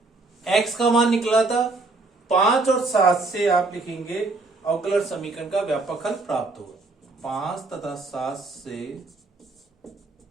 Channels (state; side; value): quieter; left; 3.4 dB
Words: x का मान निकला था 5 और 7 से आप लिखेंगे अवकलन समीकरण का व्यापक हल प्राप्त होगा। 5 तथा 7 से